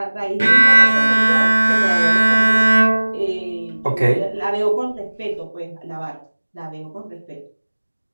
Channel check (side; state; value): both; inverted; correlation -1.00